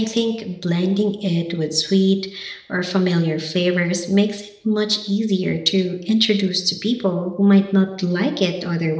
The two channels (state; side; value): identical; both; correlation 1.00